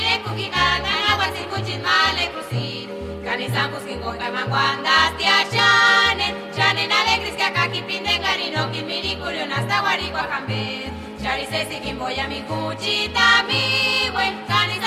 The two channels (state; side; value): identical; both; correlation 1.00